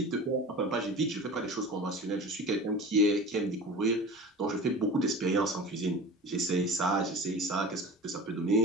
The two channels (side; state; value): both; normal; correlation 0.35